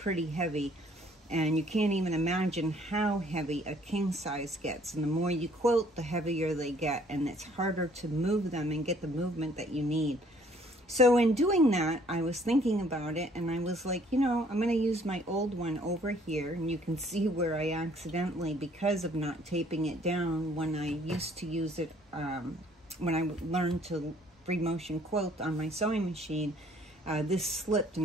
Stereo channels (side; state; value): both; normal; correlation 0.60